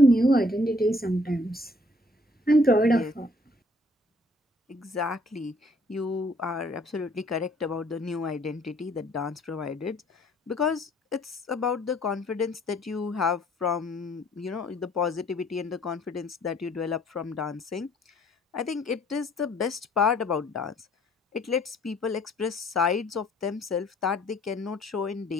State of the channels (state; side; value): normal; both; correlation 0.61